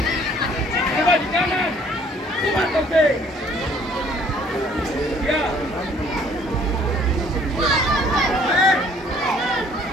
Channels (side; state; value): both; normal; correlation 0.58